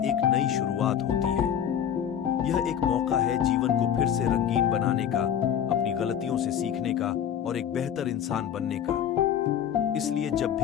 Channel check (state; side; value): quieter; right; 9.2 dB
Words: नई शुरुआत होती है। यह एक मौका है जीवन को फिर से रंगीन बनाने का, अपनी अपनी गलतियों से सीखने का और एक बेहतर इंसान बनने का। इसलिए जब